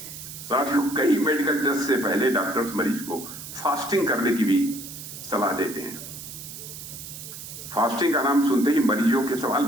साथियों, कई मेडिकल टेस्ट से पहले डॉक्टर्स मरीज को फास्टिंग करने की भी सलाह देते हैं। फास्टिंग का नाम सुनते ही मरीजों के सवाल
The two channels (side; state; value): right; noise; hiss, 11 dB below the sound